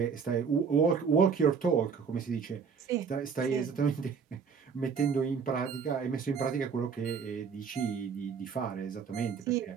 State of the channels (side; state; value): left; quieter; 6.0 dB